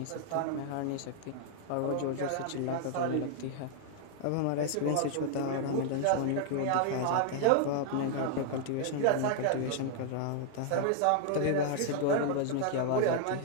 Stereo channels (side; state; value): both; different; correlation 0.00